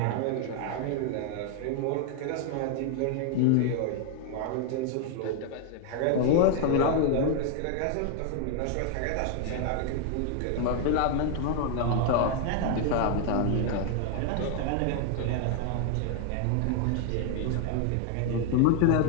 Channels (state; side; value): different; both; correlation 0.00